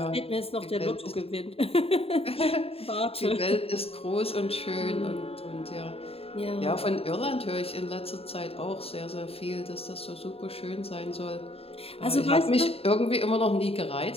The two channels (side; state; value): right; late; 0.28 ms